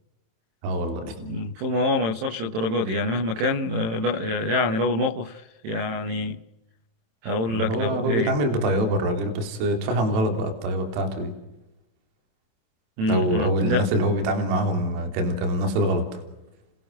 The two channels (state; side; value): late; left; 27 ms